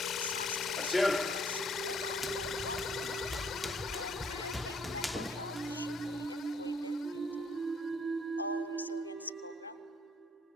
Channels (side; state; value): both; normal; correlation 0.64